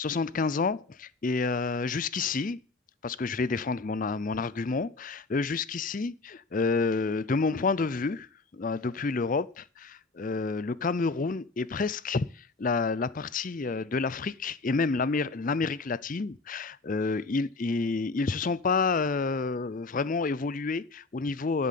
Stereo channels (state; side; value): quieter; right; 3.8 dB